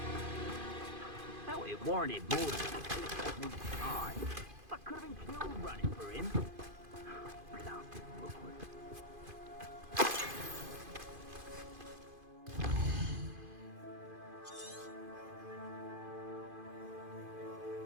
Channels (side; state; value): left; late; 2.5 ms